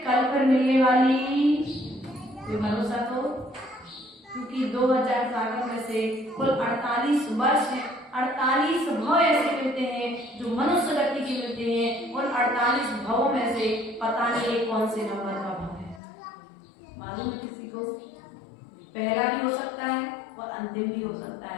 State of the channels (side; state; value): right; drops out; at 16.0 s